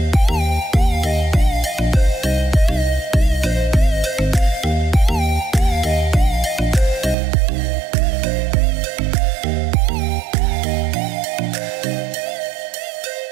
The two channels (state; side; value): drops out; left; at 7.2 s